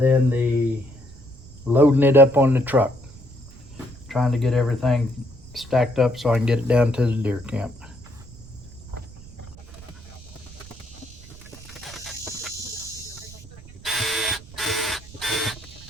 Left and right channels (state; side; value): noise; right; rumble, 19 dB below the sound